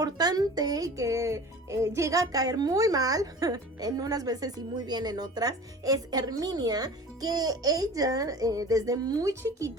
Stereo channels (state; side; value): normal; both; correlation 0.40